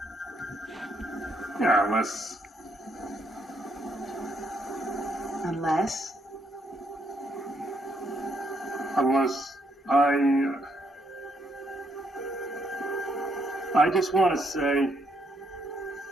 Yeah, unless I just want to say,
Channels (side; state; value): both; normal; correlation 0.74